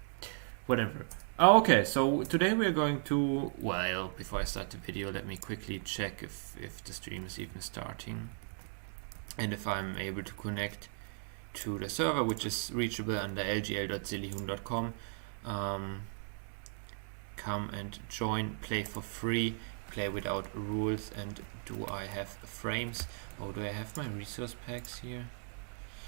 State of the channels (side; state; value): left; silent; 54 dB below the other